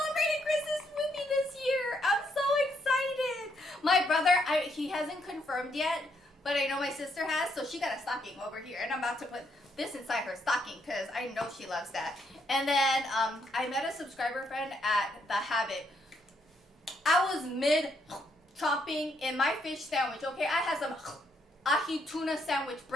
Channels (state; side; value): normal; both; correlation 0.74